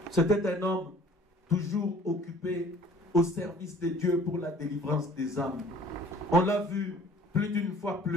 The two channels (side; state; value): both; normal; correlation 0.52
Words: C'était un homme toujours occupé au service de Dieu pour la délivrance des âmes. On l'a vu plus d'une fois